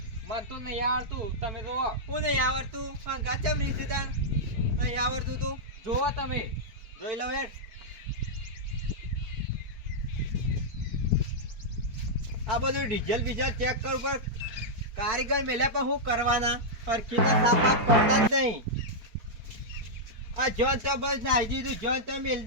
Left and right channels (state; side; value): late; left; 4.5 ms